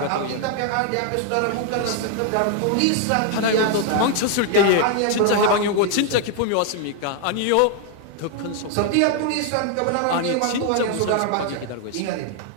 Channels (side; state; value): both; different; correlation 0.00